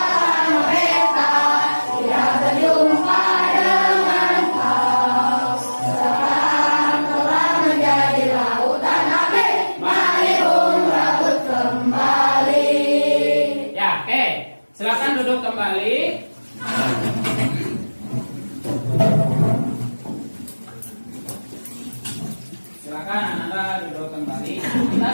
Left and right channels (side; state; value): both; inverted; correlation -1.00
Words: Silakan duduk kembali. Silakan Anda duduk kembali. Kita